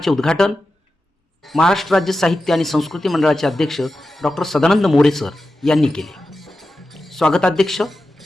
उद्घाटन महाराष्ट्र राज्य साहित्य आणि संस्कृती मंडळाचे अध्यक्ष डॉक्टर सदानंद मोरे सर यांनी केले। स्वागताध्यक्ष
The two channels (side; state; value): both; normal; correlation 0.92